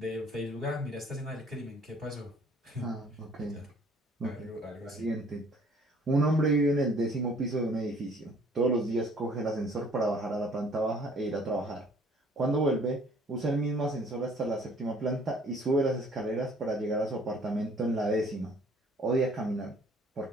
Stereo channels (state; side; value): normal; both; correlation 0.57